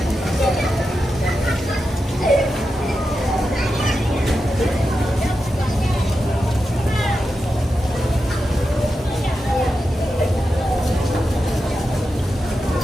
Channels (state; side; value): normal; both; correlation 0.89